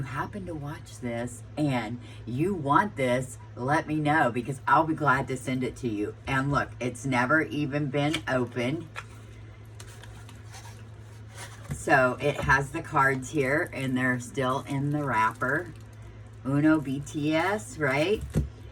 happen to watch this and you want this, let me know, because I'll be glad to send it to you. And look, it's never even been opened. So it has the cards here, and they're still in the wrapper. Uno BTS, right?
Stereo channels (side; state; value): both; identical; correlation 1.00